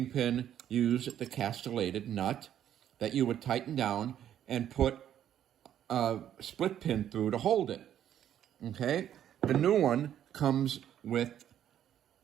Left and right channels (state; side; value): quieter; left; 10.5 dB